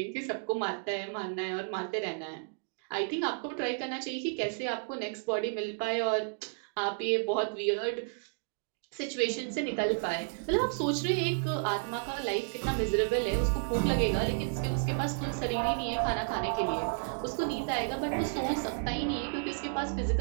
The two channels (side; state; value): left; silent; digital silence